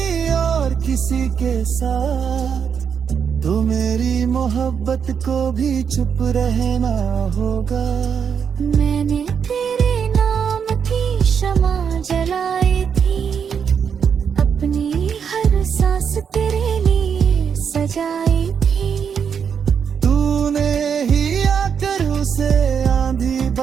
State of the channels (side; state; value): left; quieter; 7.1 dB